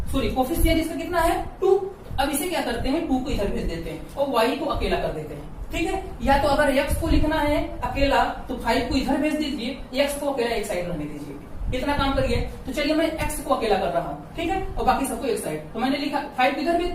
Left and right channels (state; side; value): identical; both; correlation 1.00